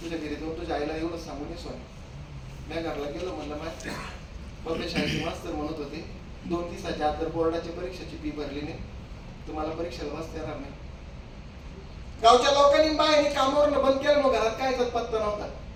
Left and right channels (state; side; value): identical; both; correlation 1.00